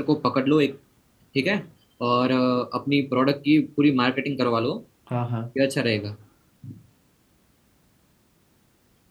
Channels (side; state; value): both; identical; correlation 1.00